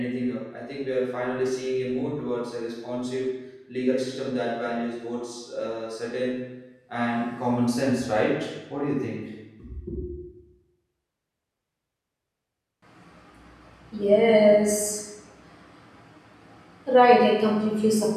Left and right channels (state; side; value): identical; both; correlation 1.00